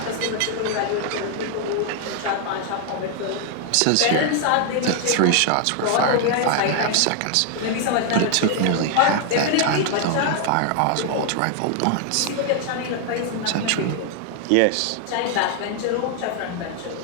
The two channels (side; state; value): both; different; correlation 0.00